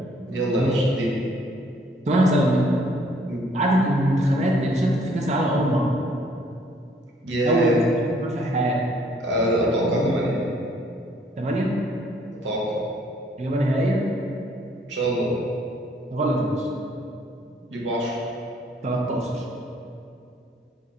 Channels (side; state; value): both; normal; correlation 0.63